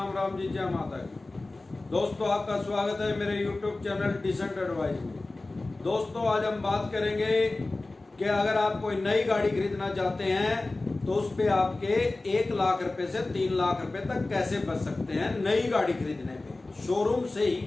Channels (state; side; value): quieter; right; 3.1 dB